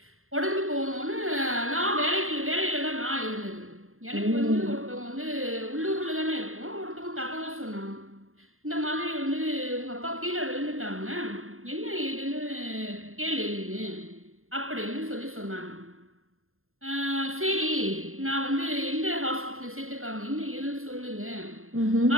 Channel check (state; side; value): late; left; 0.61 ms